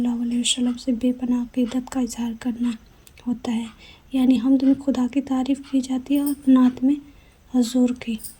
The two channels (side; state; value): both; identical; correlation 1.00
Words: علیہ وسلم سے بے پناہ عقیدت کا اظہار کرنا ہوتا ہے۔ یعنی حمد میں خدا کی تعریف کی جاتی ہے اور نعت میں حضور کی